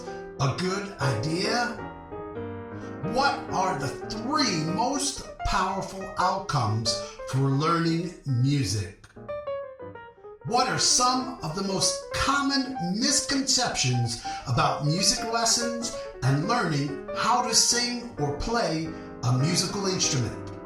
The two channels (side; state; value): both; identical; correlation 1.00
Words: a good idea? What are the 3 most powerful outcomes for learning music? What are some of the most common misconceptions about music lessons and learning how to sing or play a musical instrument?